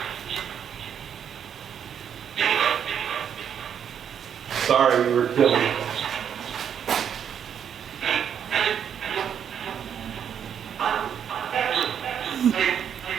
Sorry you were killed.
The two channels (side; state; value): left; quieter; 8.4 dB